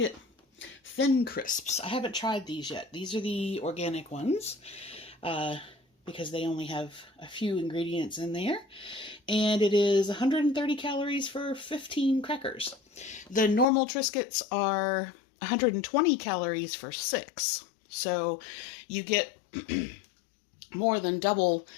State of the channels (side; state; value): right; drops out; at 13.7 s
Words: Thin crisps. I haven't tried these yet. These are the organic ones because they only have a few ingredients in there. And it is 130 calories for 15 crackers. The normal Triscuits are 120 calories for 6. So you get more than double